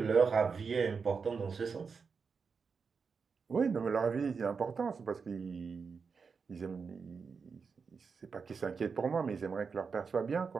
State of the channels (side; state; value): left; quieter; 5.4 dB